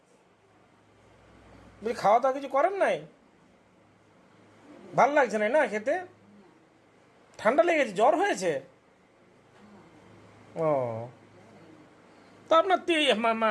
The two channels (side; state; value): both; identical; correlation 1.00